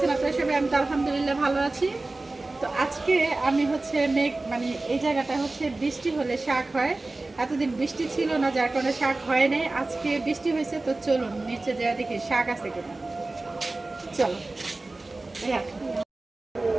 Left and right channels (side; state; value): left; quieter; 3.1 dB